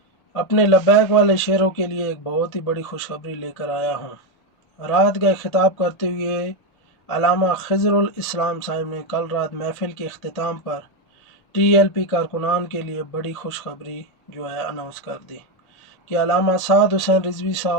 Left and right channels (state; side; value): late; right; 1.8 ms